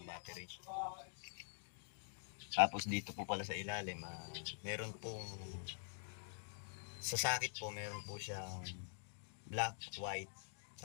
battery. Tapos dito po pala sa ilalim, meron pong sa sakit po, meron po siyang black, white,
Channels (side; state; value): right; silent; digital silence